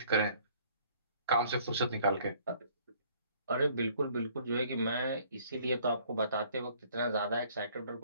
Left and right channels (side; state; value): both; inverted; correlation -0.58